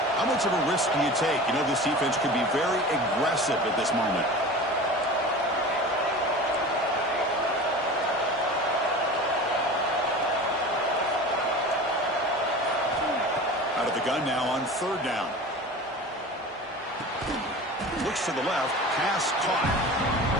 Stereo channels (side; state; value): both; normal; correlation 0.35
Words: How much of a risk do you take? You know, this defense could be very aggressive at this moment. Out of the gun now on third down. Looks fakes to the left. Pass caught.